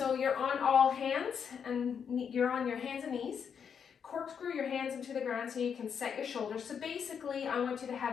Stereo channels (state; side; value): quieter; right; 7.1 dB